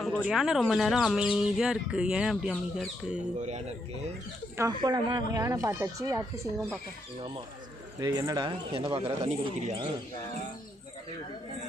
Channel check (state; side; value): normal; both; correlation 0.77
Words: ஒரு யானை ரொம்ப நேரம் அமைதியாக இருக்குது. ஏன் அப்படி அமைதியாக இருக்குது? போலாமா? யானை பார்த்தாச்சு, அடுத்து சிங்கம் பார்க்க. ஆமாம். என்னடா என்ன பார்க்குற? தண்ணி குடிக்கிறியா?